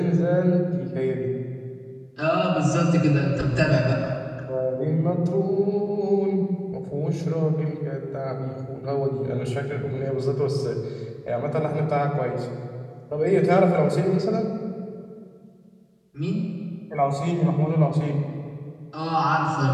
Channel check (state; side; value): identical; both; correlation 1.00